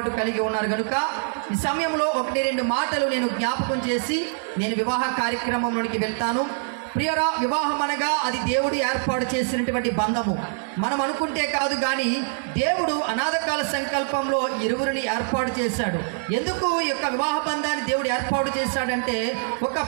కలిగి ఉన్నారు. కనుక ఈ సమయంలో 1-2 మాటలు నేను జ్ఞాపకం చేసి నేను వివాహ కార్యక్రమంలోనికి వెళ్తాను. ప్రియరా, వివాహం అనగా అది దేవుడు ఏర్పాటు చేసినటువంటి బంధము. మనం అనుకుంటే కాదు కానీ దేవుడు అనాథకాల సంకల్పంలో ఇరువురిని ఏర్పాటు చేశాడు. ఎందుకు ఈ యొక్క వివాహ బంధాన్ని దేవుడు ఏర్పాటు చేశాడంటే ఒక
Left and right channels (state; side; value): silent; left; digital silence